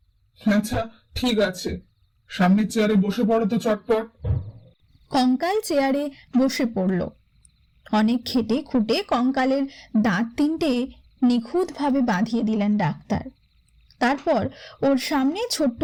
আচ্ছা ঠিক আছে, সামনের চেয়ারে বসে পড়ো তো চটপট। কঙ্কাল চেয়ারে বসে পড়ল। অনেক খেটে খুঁটে কঙ্কালের দাঁত 3টে নিখুঁতভাবে বাঁধিয়ে দিলেন ডাক্তার। তারপর ওর সামনে ছোট্ট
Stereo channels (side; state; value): both; identical; correlation 1.00